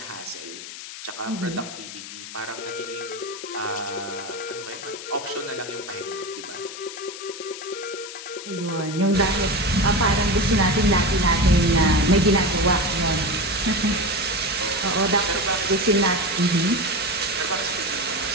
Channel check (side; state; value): left; noise; hiss, 11 dB below the sound